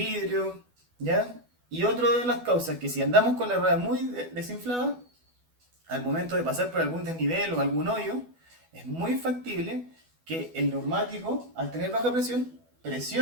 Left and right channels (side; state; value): left; late; 12 ms